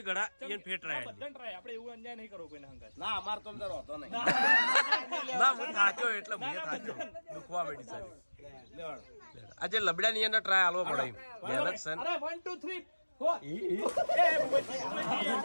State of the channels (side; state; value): both; inverted; correlation -1.00